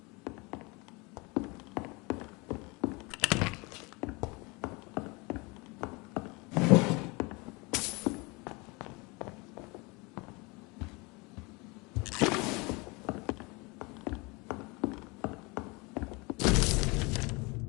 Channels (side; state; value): right; quieter; 26.9 dB